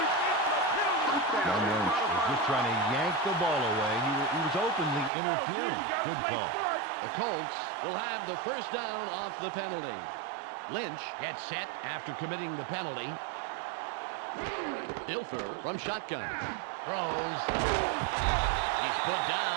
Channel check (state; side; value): drops out; left; at 5.1 s